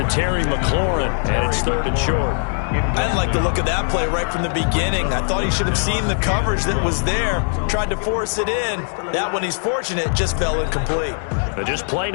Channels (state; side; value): silent; right; 66 dB below the other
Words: Terry McLaurin, and it's third and short. I didn't like the look of that play right from the beginning. I thought he should have seen the coverage that was there, tried to force it in. That one, he's fortunate, just fell incomplete. But just play